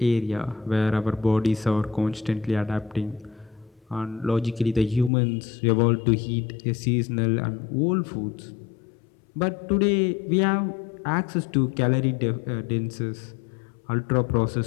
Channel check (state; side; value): drops out; right; at 5.1 s